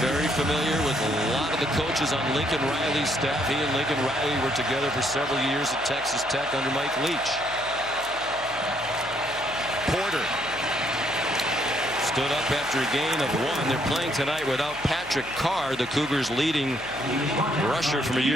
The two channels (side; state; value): left; noise; hum, 22 dB below the sound